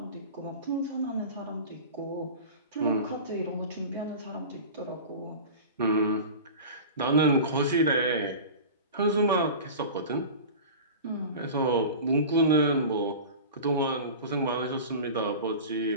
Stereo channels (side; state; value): both; inverted; correlation -0.34